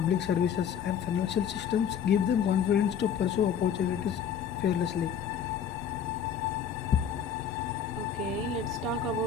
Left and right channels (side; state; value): right; quieter; 7.8 dB